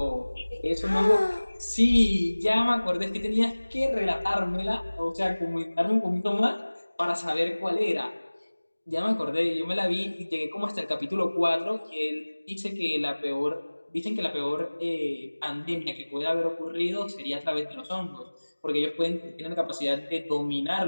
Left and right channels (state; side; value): inverted; both; correlation -1.00